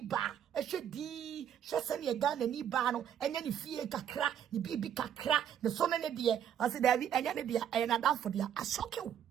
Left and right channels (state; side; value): quieter; left; 9.4 dB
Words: ehwedi hwese ne Ghana ni ba no enya ni fie kakra ni bibi kakra ne so ne de ase davi enya ne de ena dan for dia ashokew